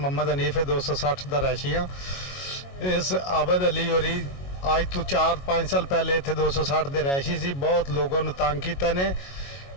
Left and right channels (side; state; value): right; late; 22 ms